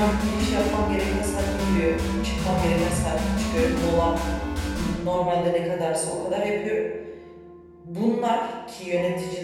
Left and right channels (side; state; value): both; identical; correlation 1.00